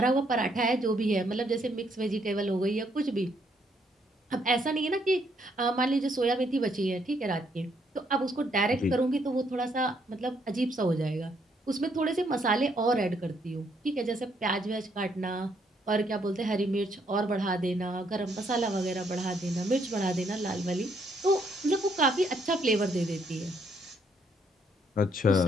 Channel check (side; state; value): both; normal; correlation 0.71